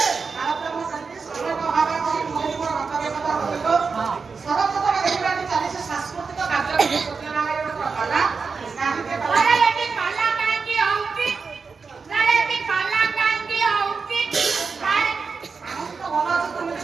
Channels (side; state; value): left; quieter; 5.0 dB